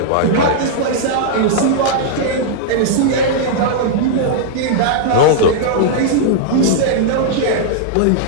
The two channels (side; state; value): both; different; correlation -0.01